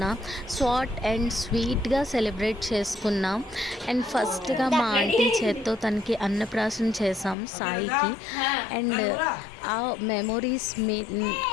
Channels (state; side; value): drops out; right; at 7.4 s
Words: షార్ట్ అండ్ స్వీట్గా సెలబ్రేట్ చేసుకున్నాం. అండ్ ఫస్ట్గా మా ఆంటీ చేత్తో తనకి అన్నప్రాసన చేసాం సాయికి. అండ్ ఆ మెమొరీస్